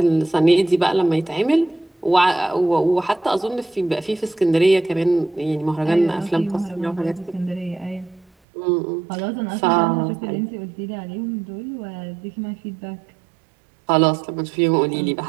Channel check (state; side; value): drops out; left; at 8.3 s